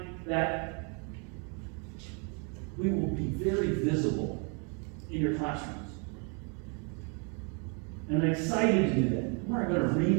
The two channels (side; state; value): left; quieter; 36.4 dB